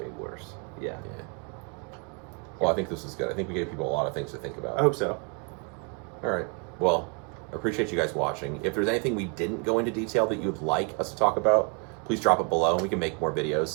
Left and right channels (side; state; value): left; quieter; 35.8 dB